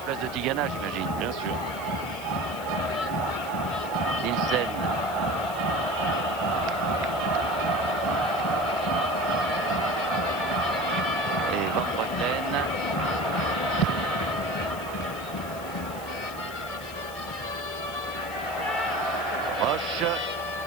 de Tigana, j'imagine. Bien sûr. Nielsen. Et Van Breukelen.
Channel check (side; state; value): left; noise; hiss, 16 dB below the sound